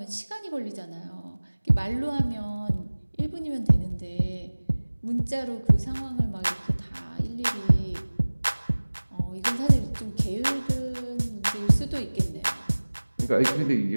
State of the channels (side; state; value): both; inverted; correlation -1.00